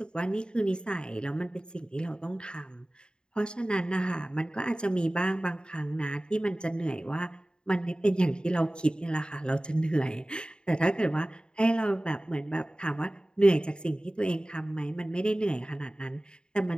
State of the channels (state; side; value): late; right; 0.050 ms